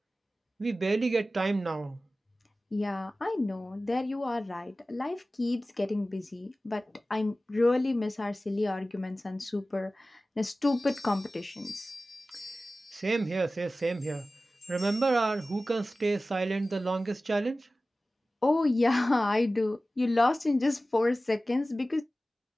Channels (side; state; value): both; normal; correlation 0.96